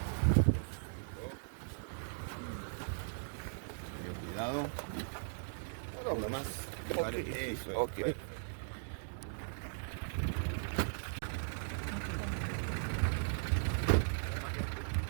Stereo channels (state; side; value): silent; left; digital silence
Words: Cuidado. No, nomás. Okay.